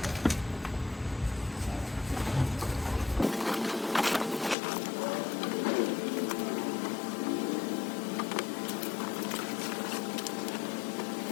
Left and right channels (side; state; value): right; drops out; at 4.5 s